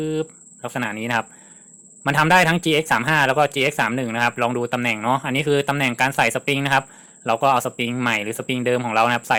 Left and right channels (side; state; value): both; identical; correlation 1.00